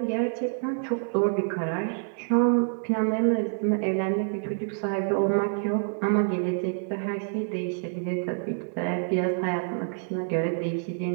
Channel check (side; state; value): left; silent; 60 dB below the other